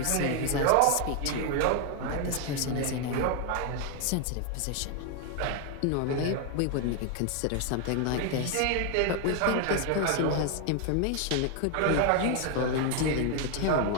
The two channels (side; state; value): both; different; correlation 0.00